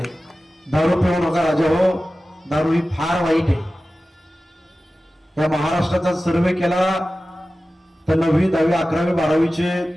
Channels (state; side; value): normal; both; correlation 0.95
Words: दारू पिऊ नका राजा हो, दारू ही फार वाईट आहे. या महाराष्ट्राचा सर्वे केला तर 9वी, 10वी, 11वी, 12वीचे